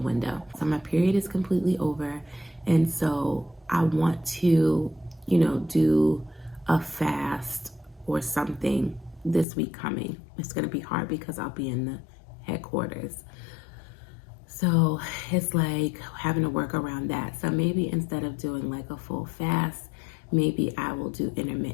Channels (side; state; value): right; drops out; at 9.5 s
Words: window. So my period is completely over, and so I want to, do a fast or something this week coming. It's going to be hard because I'll be in the headquarters. So it's like having to work around that. So maybe instead of doing like a full fast, maybe I will do